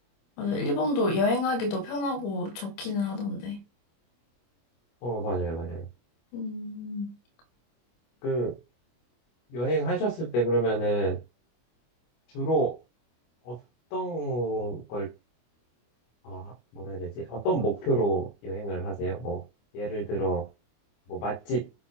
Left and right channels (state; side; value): late; right; 25 ms